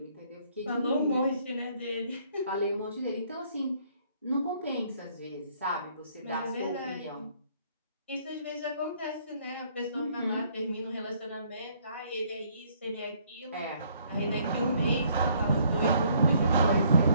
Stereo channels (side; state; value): both; inverted; correlation -0.65